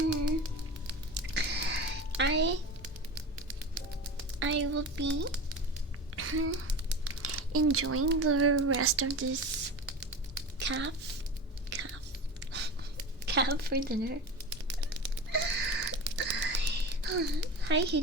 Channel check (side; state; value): both; normal; correlation 0.30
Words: I will be enjoying the rest of this calf for dinner. Hi,